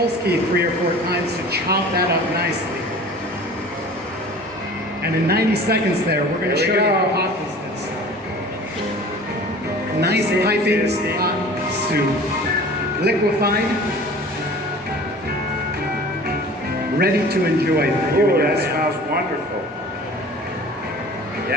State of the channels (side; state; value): both; normal; correlation 0.43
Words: key 3 or 4 times to chop that up nicely. And in 90 seconds there, we're going to show you how hot this is. Nice piping hot soup. Liquefied. Ready to enjoy for you. Oh, that smells wonderful.